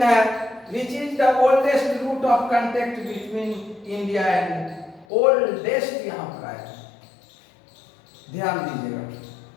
है which is the oldest route of contact between India and oldest, यहाँ पर आया, ध्यान दीजिएगा।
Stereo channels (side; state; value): right; drops out; at 5.1 s